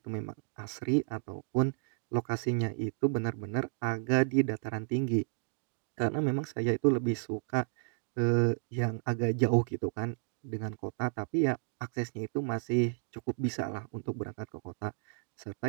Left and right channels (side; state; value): left; silent; digital silence